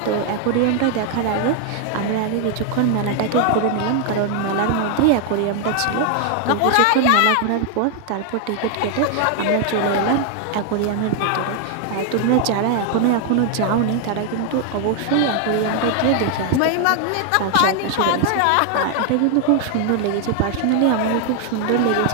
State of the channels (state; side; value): different; both; correlation 0.00